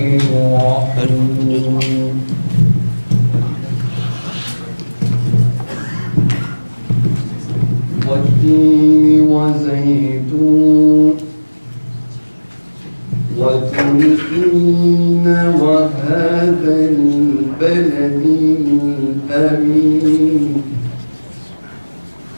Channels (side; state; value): both; inverted; correlation -1.00